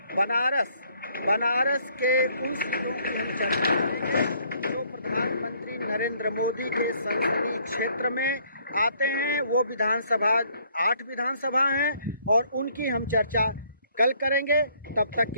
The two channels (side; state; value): both; inverted; correlation -0.64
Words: बनारस के उन सीटों की हम चर्चा करेंगे जो प्रधानमंत्री नरेंद्र मोदी के संसदीय क्षेत्र में आते हैं। वो विधानसभा 8 विधानसभा हैं और उनकी हम चर्चा कल करेंगे। तब तक